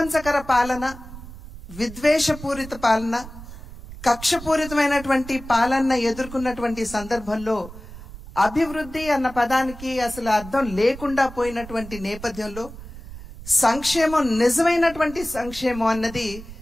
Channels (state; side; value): noise; right; rumble, 14 dB below the sound